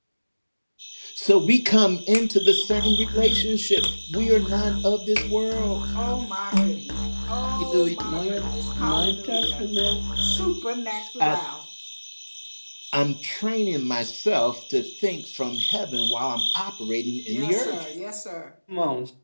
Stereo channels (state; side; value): inverted; both; correlation -1.00